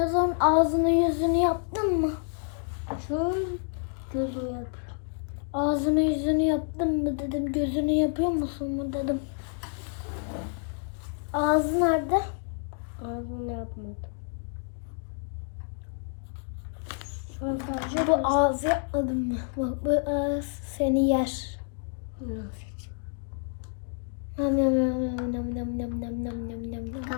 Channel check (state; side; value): silent; right; 57 dB below the other